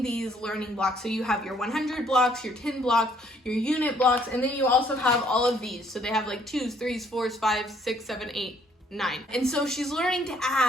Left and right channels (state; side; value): normal; both; correlation 0.64